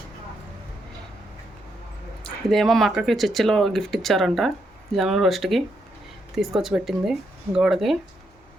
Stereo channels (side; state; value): both; normal; correlation 0.79